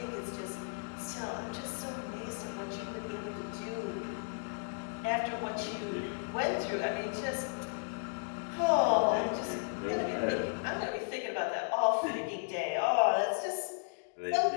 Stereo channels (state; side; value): silent; right; digital silence